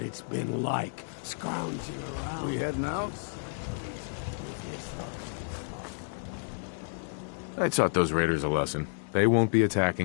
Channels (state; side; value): silent; right; digital silence